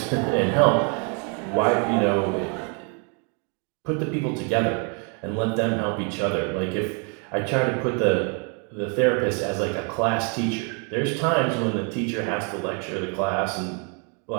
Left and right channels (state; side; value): quieter; left; 37.6 dB